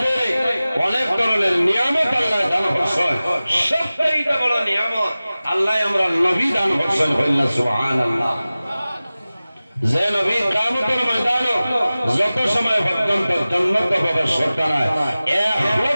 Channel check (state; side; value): inverted; both; correlation -0.97